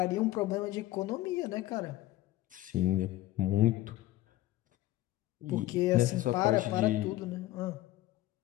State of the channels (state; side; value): quieter; right; 15.9 dB